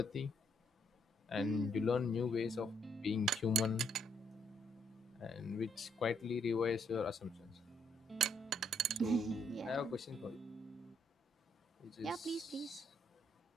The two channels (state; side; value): normal; both; correlation 0.72